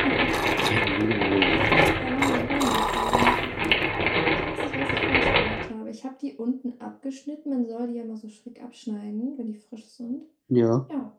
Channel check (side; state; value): both; identical; correlation 1.00